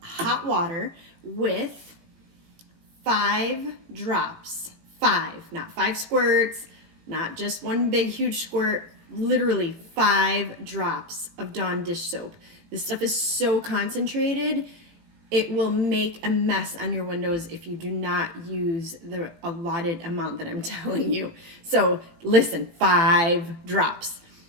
water with 5 drops. 5, not 5 squirts, not just one big huge squirt, literally 5 drops of Dawn dish soap. This stuff is so concentrated, it will make a mess on your windows if you do not use the allotted amount that I'm telling you. So listen, 5 drops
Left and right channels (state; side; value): late; left; 18 ms